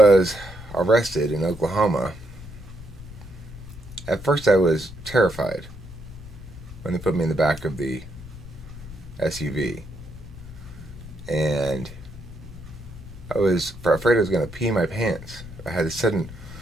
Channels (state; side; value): noise; left; rumble, 16 dB below the sound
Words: arrested in Oklahoma, at first I was terrified when they put me in the back of the SUV. And I was afraid I was going to pee my pants. I had a sudden